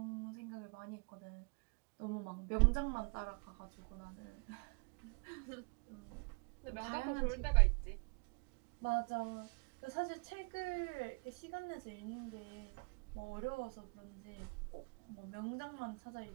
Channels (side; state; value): left; quieter; 34.3 dB